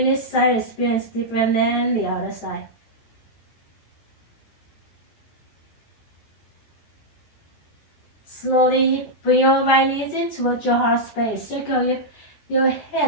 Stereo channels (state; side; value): late; right; 14 ms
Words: this side experience different than the other side. Slowly bring your right knees in towards your heart space. Circle your